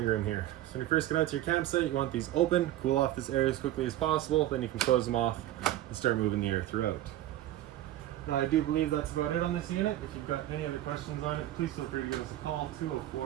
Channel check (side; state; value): left; quieter; 13.9 dB